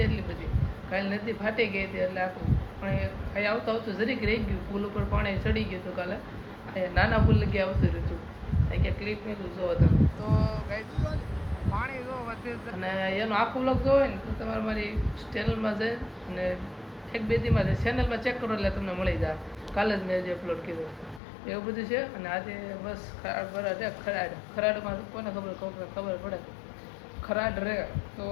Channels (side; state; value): right; drops out; at 21.2 s